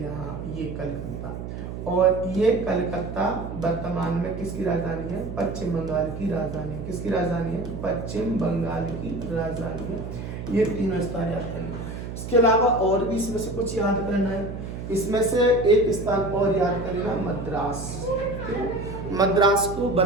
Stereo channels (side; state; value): right; noise; hum, 8 dB below the sound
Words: यहाँ ये कलकत्ता, और ये कलकत्ता वर्तमान में किसकी राजधानी है? पश्चिम बंगाल की राजधानी। किसकी राजधानी है? पश्चिम बंगाल की राजधानी है। ये तीनों स्थान याद करना। इसके अलावा और भी इसमें से कुछ याद करना है। इसमें से एक स्थान और याद करना, मद्रास। मद्रास को